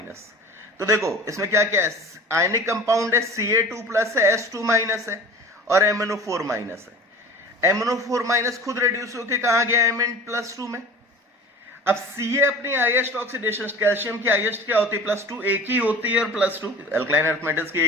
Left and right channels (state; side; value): normal; both; correlation 0.39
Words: तो देखो इसमें क्या क्या है, आयनिक कंपाउंड है Ca2 प्लस है, H2- है, और MNO4- है। MNO4- खुद रिड्यूस होकर कहा गया Mn+2 में। अब Ca अपनी हाईएस्ट ऑक्सीडेशन, कैल्शियम की हाईएस्ट क्या होती है +2, एक ही होती है, और +2 अल्कलाइन अर्थ मेटल्स की